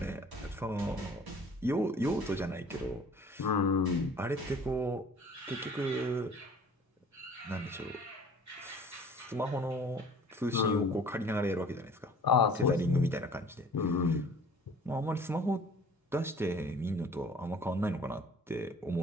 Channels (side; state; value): both; normal; correlation 0.50